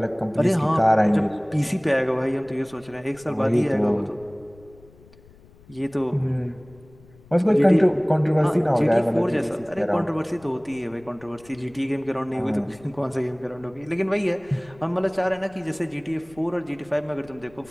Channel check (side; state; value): left; noise; rumble, 25 dB below the sound